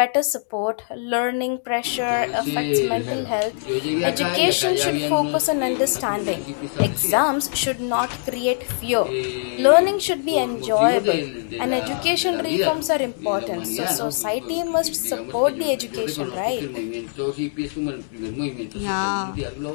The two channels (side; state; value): right; silent; digital silence